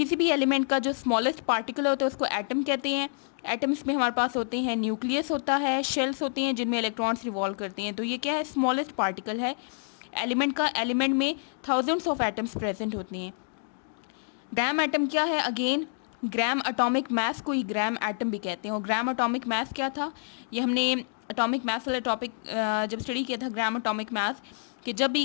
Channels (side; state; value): right; silent; 59 dB below the other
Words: भी एलिमेंट का जो स्मॉलेस्ट पार्टिकल होता है उसको एटम कहते हैं। एटम्स में हमारे पास होते हैं न्यूक्लियस होता है, शेल्स होते हैं जिनमें इलेक्ट्रॉन्स रिवॉल्व करते हैं। तो ये क्या है, स्मॉलेस्ट पार्टिकल है एलिमेंट का। एलिमेंट में थाउजेंड्स ऑफ एटम्स प्रेजेंट होते हैं। ग्राम एटम क्या है, अगेन ग्राम एटॉमिक मास को ही ग्राम एटम भी कहते हैं। और ग्राम एटॉमिक मास क्या था, ये हमने एटॉमिक मास वाला टॉपिक जब स्टडी किया था, ग्राम एटॉमिक मास, कि जब